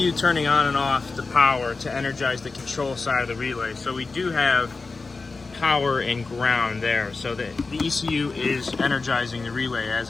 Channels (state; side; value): quieter; right; 4.0 dB